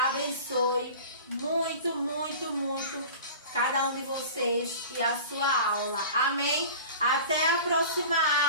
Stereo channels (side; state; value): both; inverted; correlation -0.38